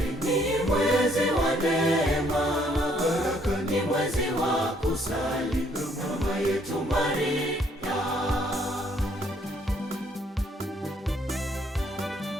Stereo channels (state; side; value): normal; both; correlation 0.66